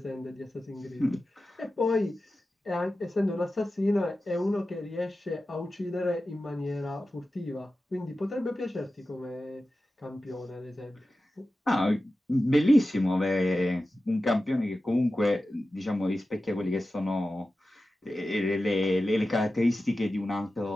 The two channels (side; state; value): both; normal; correlation 0.94